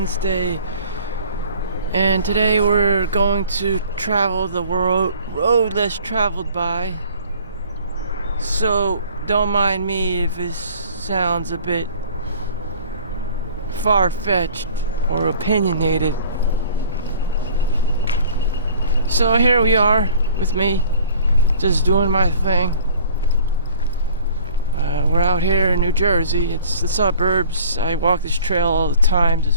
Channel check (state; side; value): inverted; both; correlation -0.49